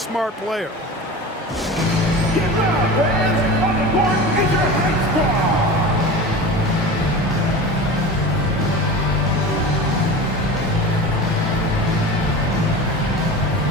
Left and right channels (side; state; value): both; normal; correlation 0.32